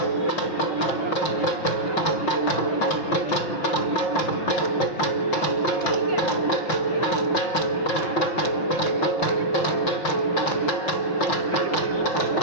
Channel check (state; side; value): late; right; 5.5 ms